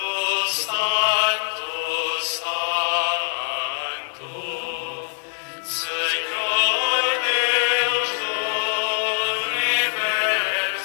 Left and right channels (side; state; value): right; silent; digital silence